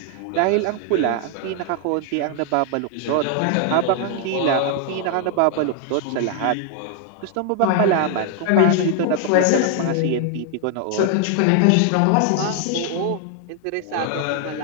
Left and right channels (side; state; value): both; different; correlation 0.00